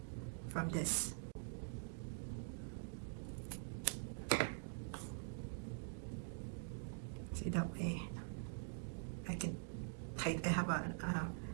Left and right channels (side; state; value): left; silent; digital silence